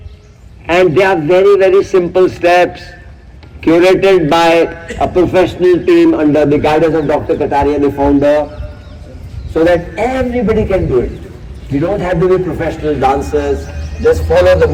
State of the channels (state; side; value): identical; both; correlation 1.00